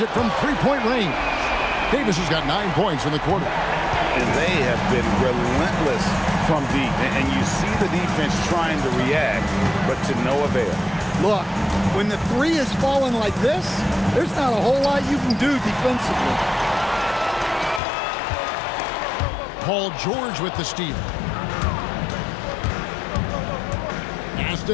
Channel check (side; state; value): right; drops out; at 17.8 s